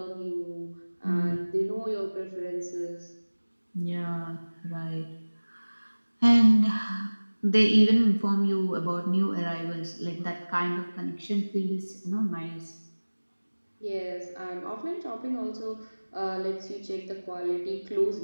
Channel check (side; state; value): both; inverted; correlation -1.00